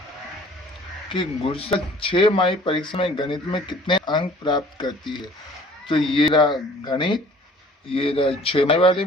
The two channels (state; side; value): normal; both; correlation 0.51